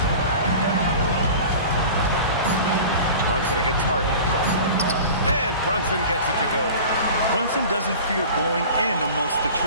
Brunson against Harden. And Brunson gets it to go. Brunson doesn't fear going in amongst the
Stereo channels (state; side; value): inverted; both; correlation -0.38